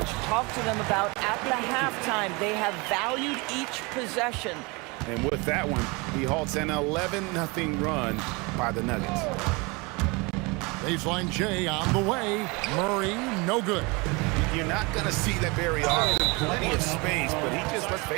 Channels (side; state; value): left; quieter; 27.2 dB